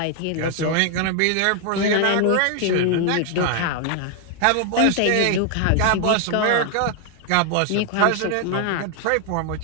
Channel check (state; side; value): different; both; correlation 0.00